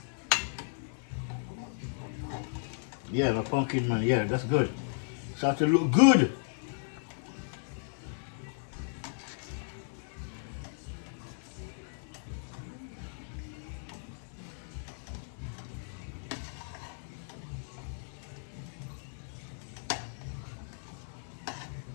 Yeah, the pumpkin, man. Yeah, that's good. Start to look good.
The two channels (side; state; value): right; silent; 55 dB below the other